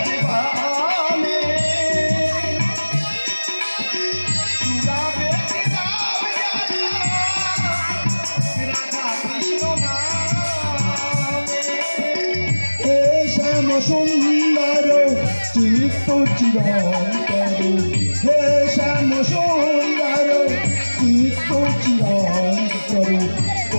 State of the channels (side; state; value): both; inverted; correlation -1.00